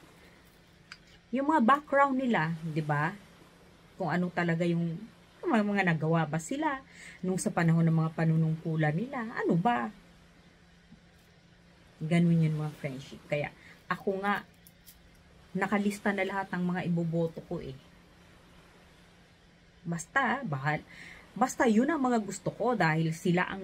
yung mga background nila, 'di ba? Kung ano talaga yung mga nagawa ba sila nung sa panahon ng mga panunungkulan nila. Ano ba? Ganun yun mga friendship. Kaya ako nga nakalista na lahat ng mga iboboto ko eh. Basta yun ang mga gusto ko dahil sila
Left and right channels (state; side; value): identical; both; correlation 1.00